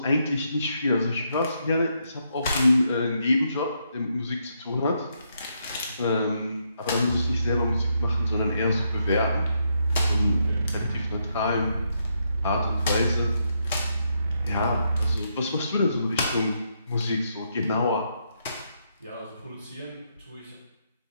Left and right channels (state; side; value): inverted; both; correlation -0.78